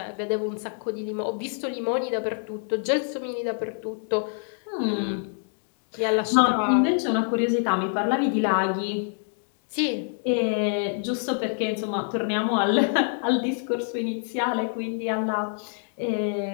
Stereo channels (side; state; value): right; silent; 55 dB below the other